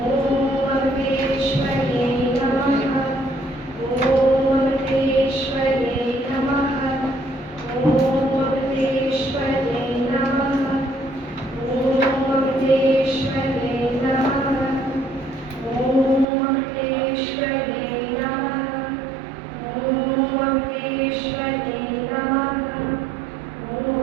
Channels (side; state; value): left; drops out; at 16.2 s